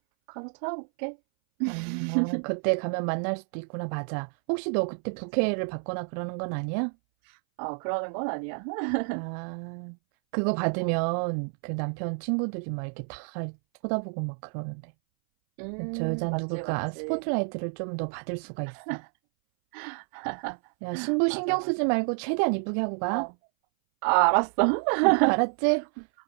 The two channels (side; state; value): left; silent; 59 dB below the other